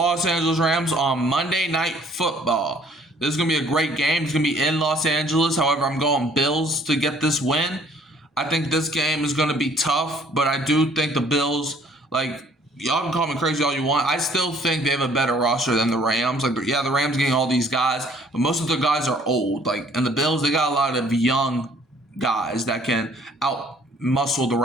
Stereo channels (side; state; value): both; normal; correlation 0.59